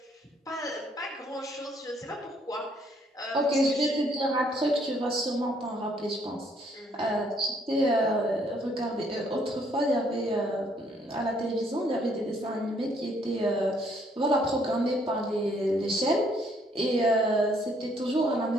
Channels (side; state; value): both; normal; correlation 0.67